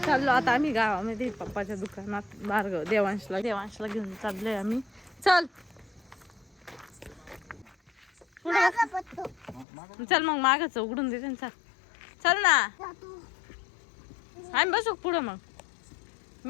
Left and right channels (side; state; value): right; drops out; at 9.7 s